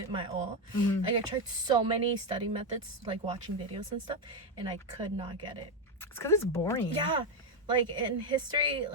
my all. Like I tried so many study methods, like watching videos and stuff, and I could not get it. It's because it's boring. Yeah, Like in history,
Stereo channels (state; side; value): normal; both; correlation 0.07